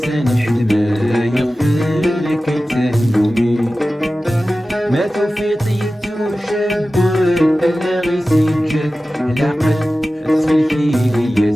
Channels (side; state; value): both; normal; correlation 0.95